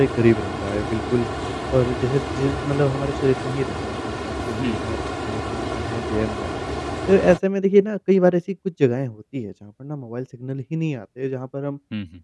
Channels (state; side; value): identical; both; correlation 1.00